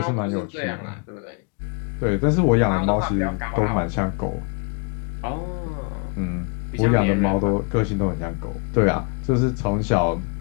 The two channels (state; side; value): quieter; right; 32.1 dB